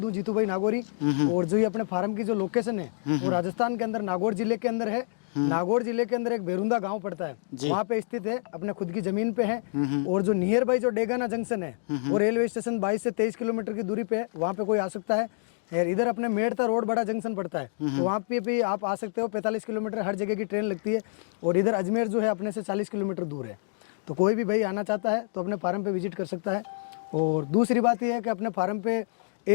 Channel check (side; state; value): right; silent; digital silence